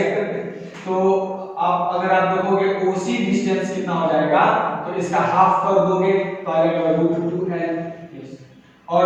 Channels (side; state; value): both; identical; correlation 1.00